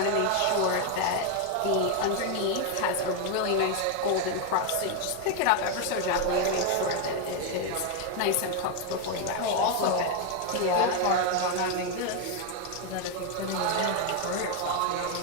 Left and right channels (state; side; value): different; both; correlation 0.01